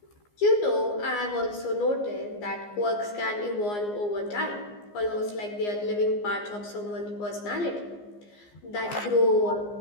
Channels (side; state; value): right; late; 14 ms